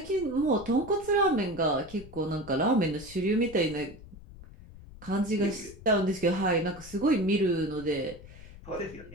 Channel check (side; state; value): left; noise; rumble, 18 dB below the sound